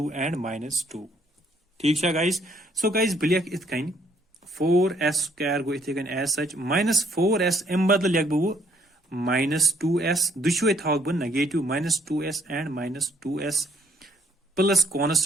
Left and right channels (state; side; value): normal; both; correlation 0.66